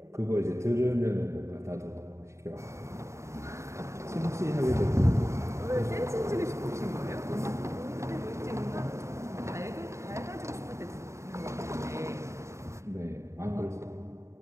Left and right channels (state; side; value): late; left; 0.14 ms